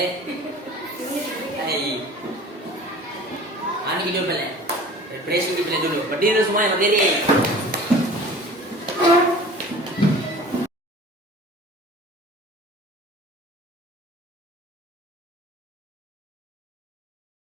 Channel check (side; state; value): both; normal; correlation 0.43